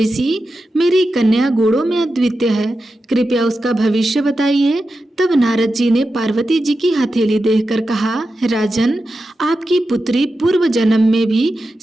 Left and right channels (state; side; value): normal; both; correlation 0.91